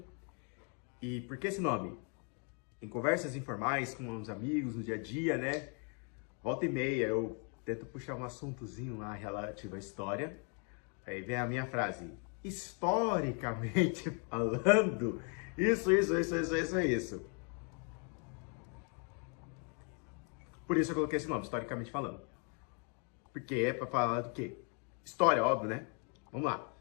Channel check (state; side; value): quieter; right; 38.8 dB